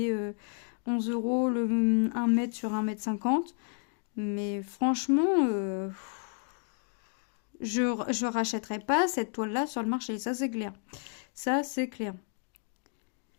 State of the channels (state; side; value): quieter; right; 39.8 dB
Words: 11 euros le 1 mètre sur 1 mètre 50. Mais franchement, je rachèterai pas cette toile-là sur le marché. Ça, c'est clair. Ça, c'est clair.